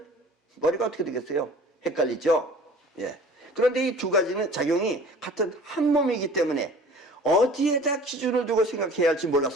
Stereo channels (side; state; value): both; normal; correlation 0.46